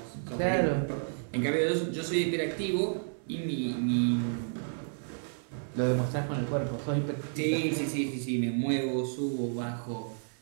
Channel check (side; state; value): left; silent; digital silence